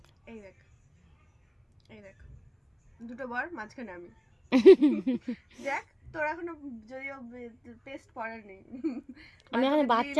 এই দেখ, এই দেখ, দুটো বর মাঝখানে আমি। দেখ তোর এখনো যদিও পেস্ট পড়ার নেই, আমি এখন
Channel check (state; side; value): identical; both; correlation 1.00